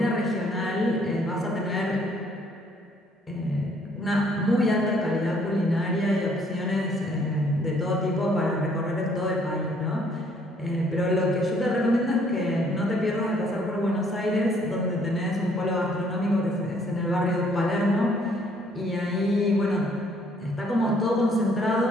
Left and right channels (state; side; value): normal; both; correlation 0.64